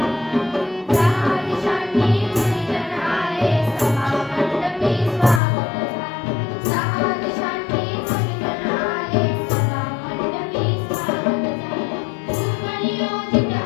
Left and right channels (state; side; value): drops out; right; at 5.4 s